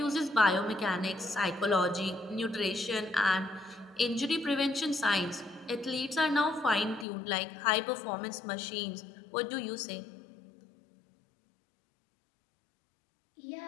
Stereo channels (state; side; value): drops out; right; at 7.1 s